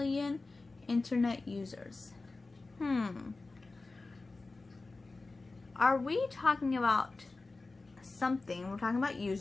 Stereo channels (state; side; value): quieter; right; 3.5 dB